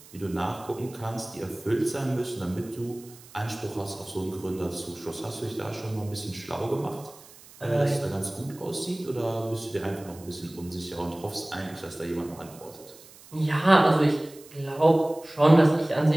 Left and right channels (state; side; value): noise; right; hiss, 22 dB below the sound